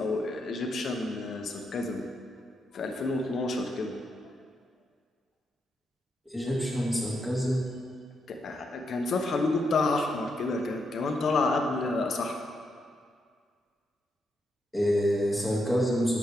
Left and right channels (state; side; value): normal; both; correlation 0.82